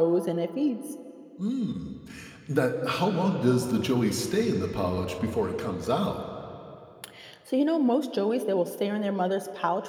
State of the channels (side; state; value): both; identical; correlation 1.00